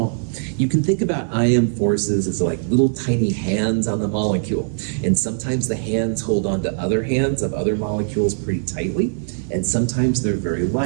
You can think about IM forces as like little tiny hands on the molecule. And sometimes the hands hold on to other hands of other molecules pretty tightly, and sometimes they're very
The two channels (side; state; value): left; silent; digital silence